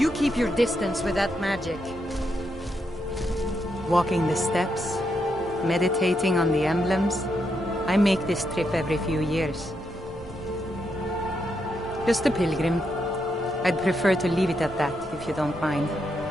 keep your distance with that magic. Walking the steps, meditating on the emblems. I make this trip every few years. Just a pilgrim. I'd prefer to leave it at that, if you don't mind.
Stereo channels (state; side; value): normal; both; correlation 0.81